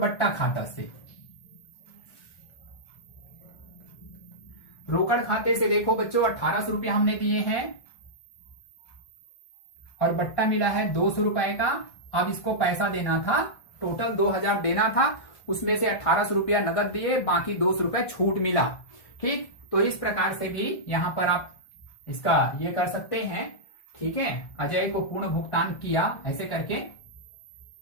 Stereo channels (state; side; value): late; right; 1.5 ms